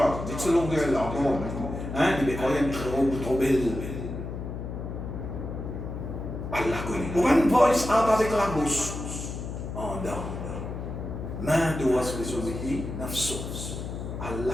dites ce longueur là encore. Hein, il est quand même trop belle. Allah connaît. Pour une voice out avec la bouche. En dedans. Main doit se résoudre nafsos.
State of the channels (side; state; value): left; noise; hum, 7 dB below the sound